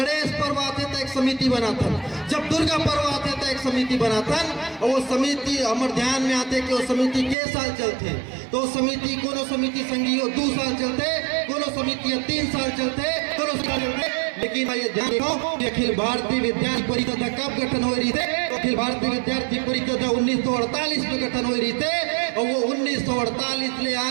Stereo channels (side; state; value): left; drops out; at 7.4 s